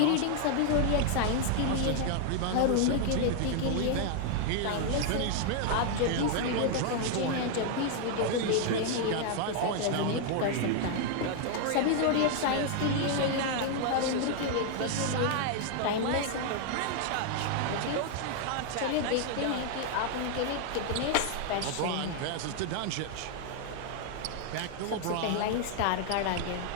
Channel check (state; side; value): different; both; correlation 0.00